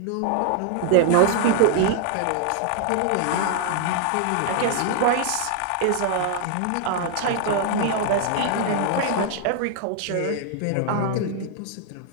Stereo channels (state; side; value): different; both; correlation 0.00